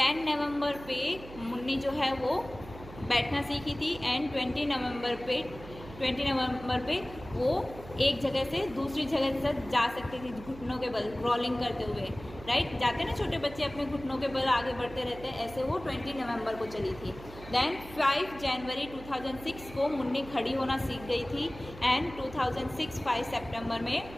नवंबर पे मुन्नी जो है वो बैठना सीखी थी एंड 20 नवंबर पे वो एक जगह से दूसरी जगह तक जा सकती थी घुटनों के बल क्रॉलिंग करते हुए, राइट। जाते हैं ना छोटे बच्चे अपने घुटनों के बल आगे बढ़ते रहते हैं, ऐसे वो 20 नवंबर को चली थी। देन 5 जनवरी 2006 को मुन्नी खड़ी होना सीख गई थी एंड 2006 5 सितंबर में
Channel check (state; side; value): noise; right; hum, 16 dB below the sound